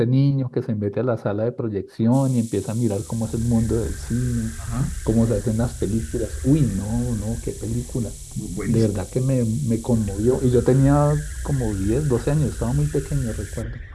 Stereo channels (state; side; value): identical; both; correlation 1.00